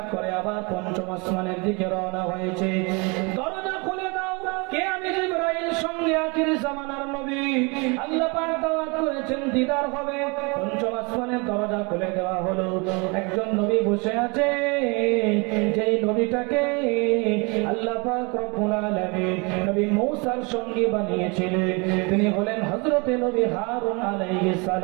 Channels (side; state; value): left; quieter; 29.7 dB